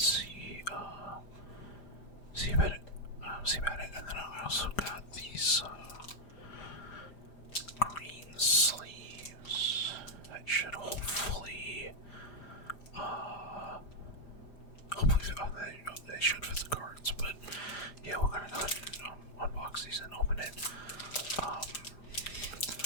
see about it, and then I also got these green sleeves that should hopefully they should fit the cards, but yeah, we're gonna go ahead and unbox these and open it.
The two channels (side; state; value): right; late; 5.0 ms